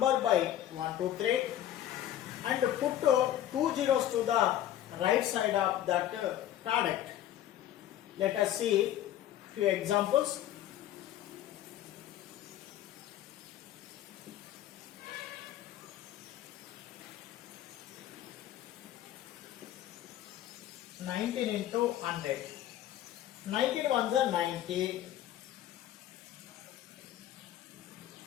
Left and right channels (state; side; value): quieter; right; 12.2 dB